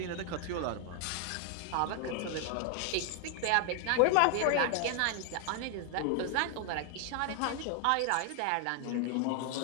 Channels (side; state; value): both; different; correlation 0.00